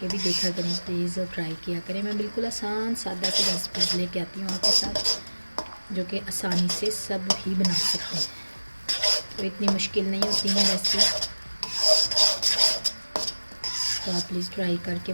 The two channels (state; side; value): inverted; both; correlation -1.00